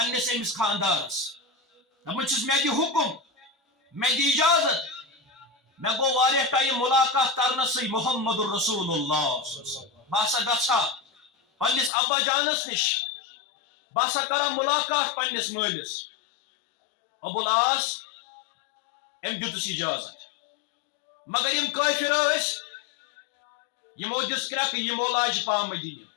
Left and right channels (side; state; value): right; drops out; at 11.9 s